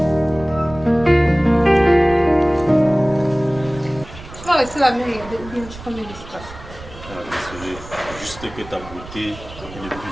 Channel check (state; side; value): noise; right; rumble, 16 dB below the sound